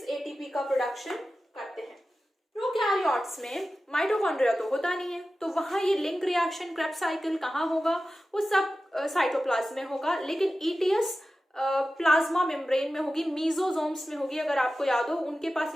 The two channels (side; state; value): both; normal; correlation 0.94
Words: ATP का प्रोडक्शन करते हैं। प्रोकैरियोट्स में माइटोकॉन्ड्रिया तो होता नहीं है, तो वहां ये लिंक रिएक्शन क्रेब्स साइकिल कहाँ होगा? वो सब साइटोप्लाज्म में होगा, लेकिन ETS प्लाज्मा मेम्ब्रेन में होगी, मीजोजोम्स में होगी। अगर आपको याद हो, उनके पास